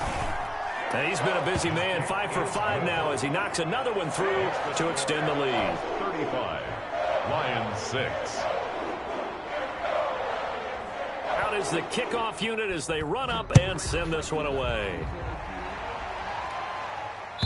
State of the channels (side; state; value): both; identical; correlation 1.00